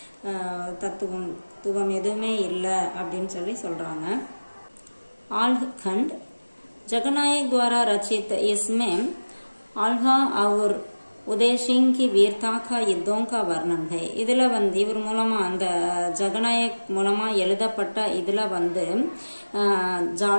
தத்துவம் எதுவுமே இல்லை அப்படின்னு சொல்றாங்க. आल्हखंड जगनायक द्वारा रचित. इसमें आल्हा और उदय सिंह की वीरता का युद्धों का वर्णन है. இதுல வந்து இவர் மூலமா அந்த ஜகநாயக் மூலமா எழுதப்பட்ட இதுல வந்து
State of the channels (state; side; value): inverted; both; correlation -1.00